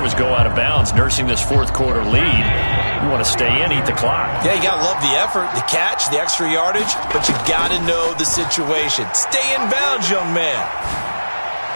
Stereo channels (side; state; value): both; inverted; correlation -1.00